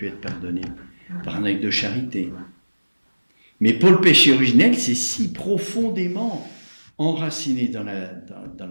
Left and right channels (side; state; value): both; inverted; correlation -1.00